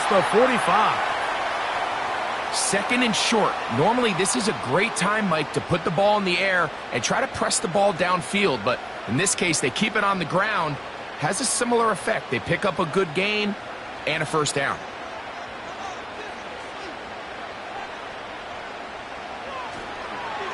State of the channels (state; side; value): identical; both; correlation 1.00